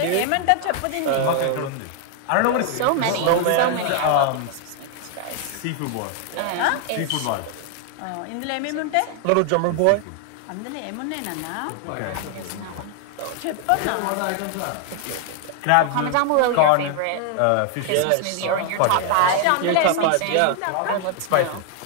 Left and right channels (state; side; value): different; both; correlation 0.00